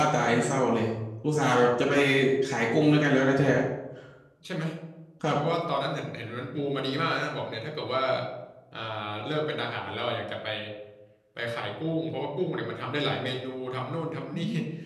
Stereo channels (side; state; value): both; identical; correlation 1.00